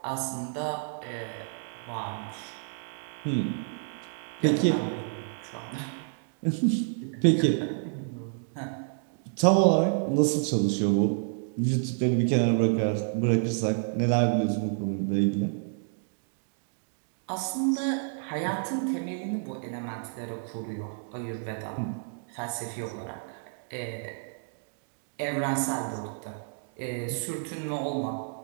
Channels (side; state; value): left; silent; digital silence